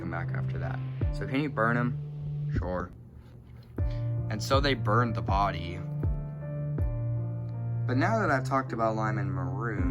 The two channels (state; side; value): identical; both; correlation 1.00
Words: back after that. So can you burn him? Sure. And so they burned the body. But now that I've talked about Lime and